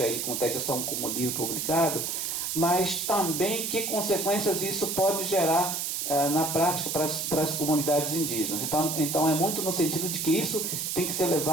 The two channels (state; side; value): noise; right; hiss, 2 dB below the sound